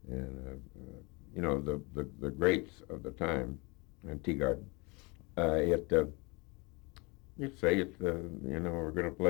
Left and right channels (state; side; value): quieter; right; 27.7 dB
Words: and the greats of the time, and Teagarden. You'd say we're going to